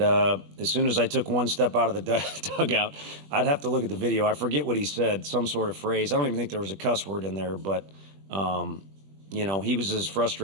as soon as I took one step out of the dugout, I'd have to look at the video. I forget what he said, some sort of phrase. I don't even think there was a cuss word in there, but he was as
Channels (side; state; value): left; late; 20 ms